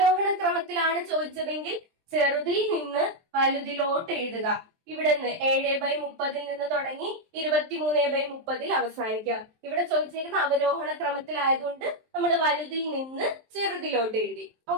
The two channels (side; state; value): left; late; 23 ms